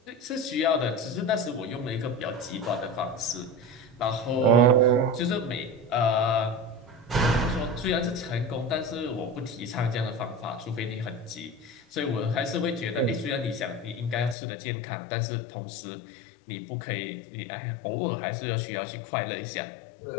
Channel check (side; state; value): right; drops out; at 14.4 s